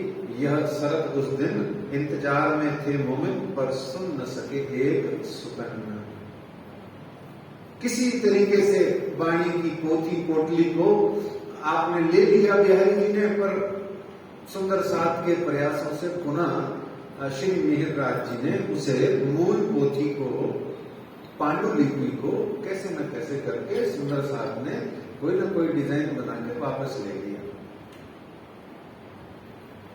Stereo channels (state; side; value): identical; both; correlation 1.00